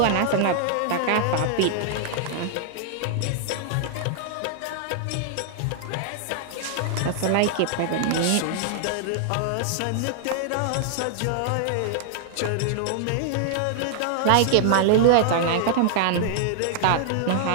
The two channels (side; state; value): both; different; correlation -0.01